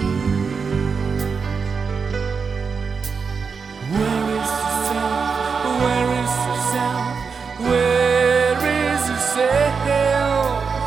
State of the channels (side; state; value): left; quieter; 5.5 dB